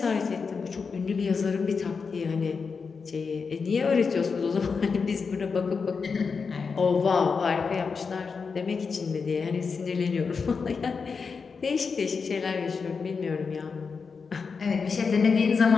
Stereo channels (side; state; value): right; quieter; 5.2 dB